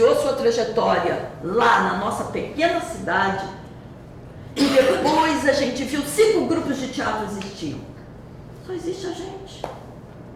sua trajetória lá na nossa pequena cidade, e depois a gente viu 5 grupos de teatro existiam, só existe a gente.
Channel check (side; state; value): both; identical; correlation 1.00